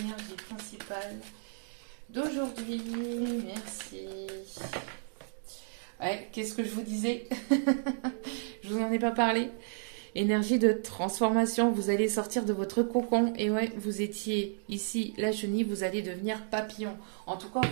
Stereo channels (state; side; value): silent; left; digital silence